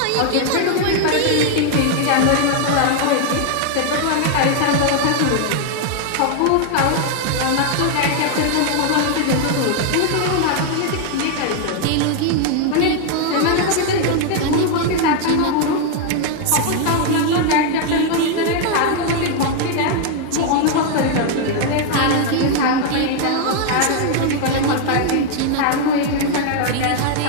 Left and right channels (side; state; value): both; different; correlation 0.00